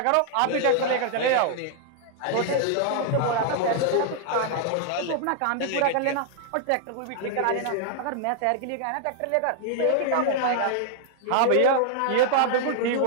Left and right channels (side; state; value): both; different; correlation -0.01